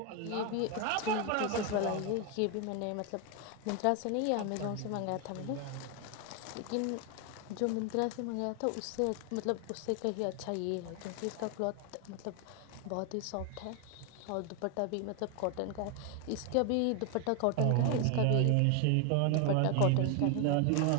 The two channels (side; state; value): both; different; correlation 0.01